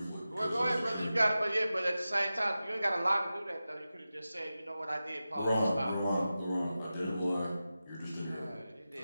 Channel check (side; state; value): both; inverted; correlation -0.94